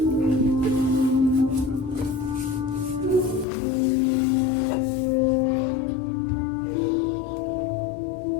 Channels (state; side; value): drops out; right; at 3.5 s